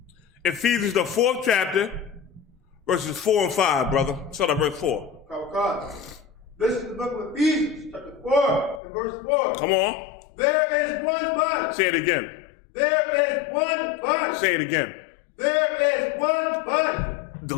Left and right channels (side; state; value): right; drops out; at 8.8 s